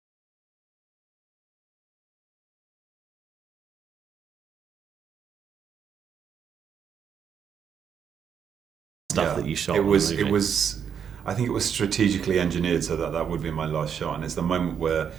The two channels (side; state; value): left; quieter; 7.7 dB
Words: Stuff that you shot it on the was it movie. was I think it was strategically engineered so that that would be my last shot, and it's the moment where